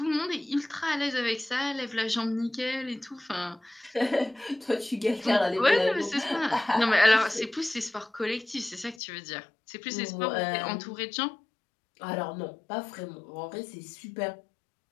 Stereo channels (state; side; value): drops out; right; at 9.0 s